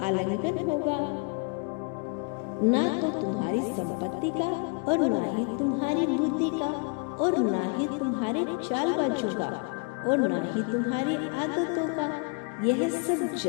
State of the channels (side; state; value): right; quieter; 35.6 dB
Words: होगा, ना तो तुम्हारी संपत्ति का और ना ही तुम्हारी बुद्धि का और ना ही तुम्हारे चालबाजों का और ना ही तुम्हारी आदतों का। यह सब